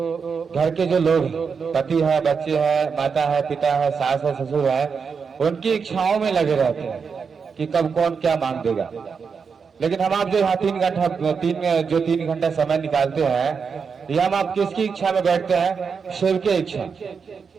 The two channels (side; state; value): left; quieter; 5.8 dB